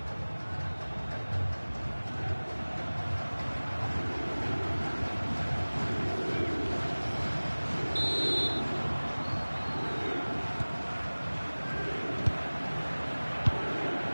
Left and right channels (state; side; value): inverted; both; correlation -1.00